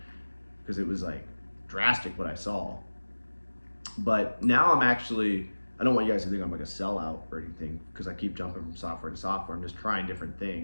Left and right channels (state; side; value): inverted; both; correlation -1.00